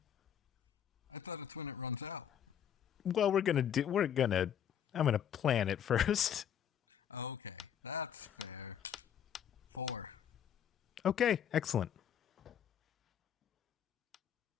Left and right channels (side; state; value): right; quieter; 9.0 dB